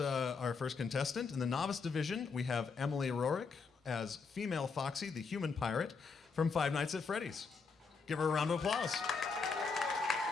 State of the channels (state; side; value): quieter; right; 5.0 dB